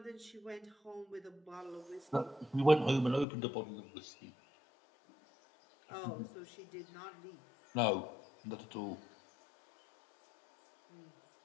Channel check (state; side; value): drops out; right; at 3.2 s